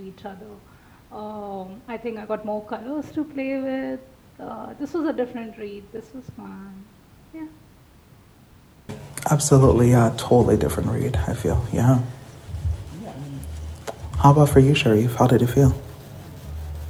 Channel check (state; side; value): identical; both; correlation 1.00